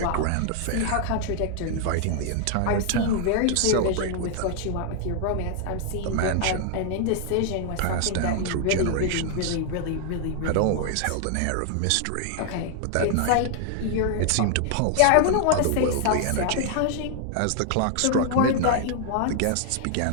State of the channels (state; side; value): different; both; correlation 0.00